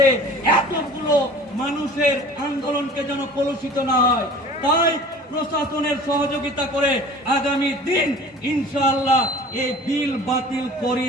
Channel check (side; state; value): both; normal; correlation 0.44